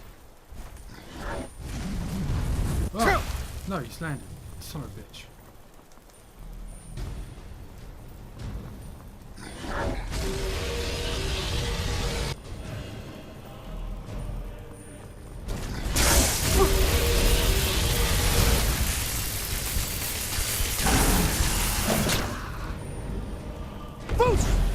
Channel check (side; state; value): both; identical; correlation 1.00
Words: Oh! No, he's landed. Son of a bitch.